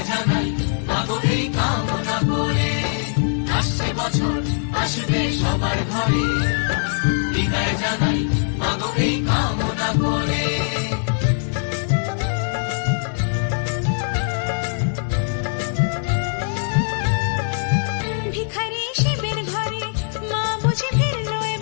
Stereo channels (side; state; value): right; silent; digital silence